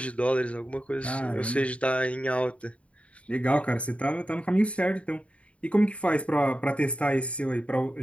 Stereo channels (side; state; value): right; late; 0.063 ms